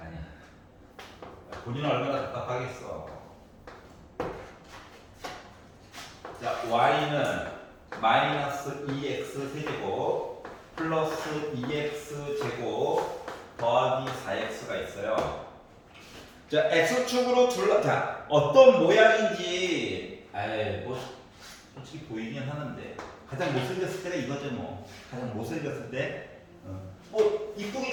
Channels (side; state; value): both; identical; correlation 1.00